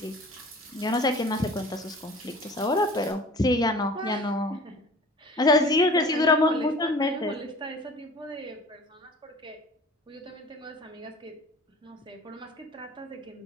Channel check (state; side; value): normal; both; correlation 0.44